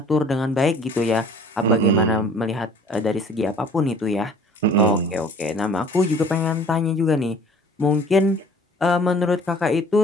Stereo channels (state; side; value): normal; both; correlation 0.51